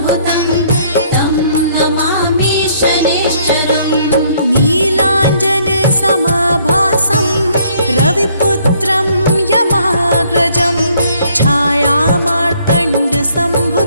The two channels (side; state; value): both; inverted; correlation -0.64